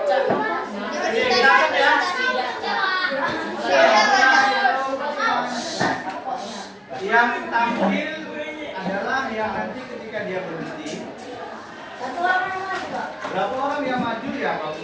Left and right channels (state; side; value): identical; both; correlation 1.00